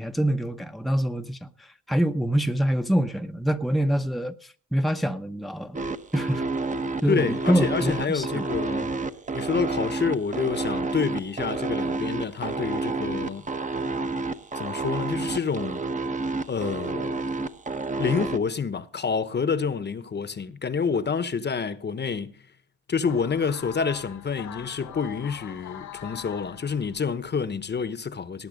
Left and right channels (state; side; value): normal; both; correlation 0.61